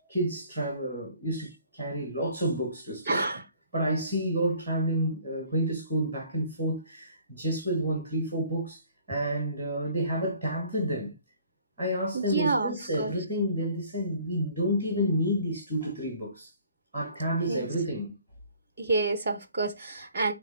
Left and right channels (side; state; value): both; inverted; correlation -0.55